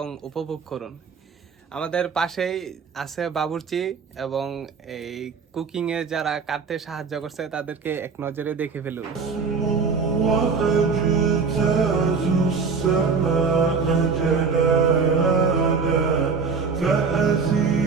উপভোগ করুন। আমাদের পাশেই আছে বাবুর্চি এবং এই কুকিং এ যারা কাটতে সাহায্য করছে তাদেরকে এক নজরে দেখে ফেলুন।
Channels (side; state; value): left; quieter; 5.2 dB